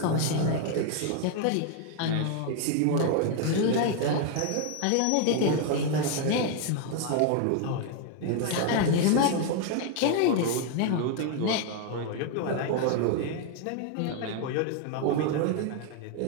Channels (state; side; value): different; both; correlation 0.01